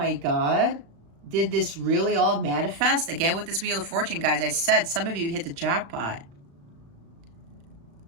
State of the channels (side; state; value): left; late; 35 ms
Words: God, did this really all manifest? Again, with this Wheel of Fortune, guys, I said some of you hit the jackpot.